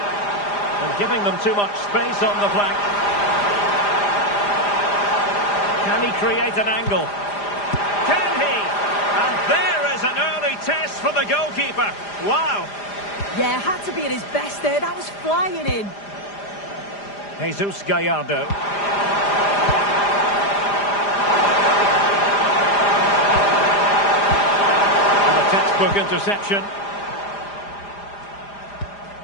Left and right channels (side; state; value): right; late; 4.9 ms